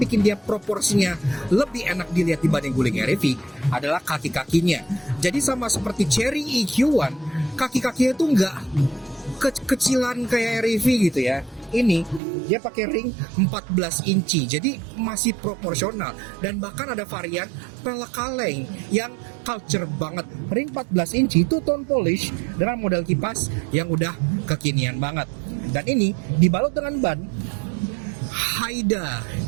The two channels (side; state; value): left; drops out; at 12.2 s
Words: dia proporsinya lebih enak dilihat dibanding guling REV adalah kaki-kakinya. Jadi sama seperti Cherry EQ1, kaki-kakinya itu nggak kecilan kayak REV gitu ya. Ini dia pakai ring 14 inci, jadi masih proporsional. Dan bahkan ada varian pelek kaleng yang culture banget. Ring 14 inci itu tone polish dengan model kipas yang udah kekinian banget. Dan ini dibalut dengan ban Haida.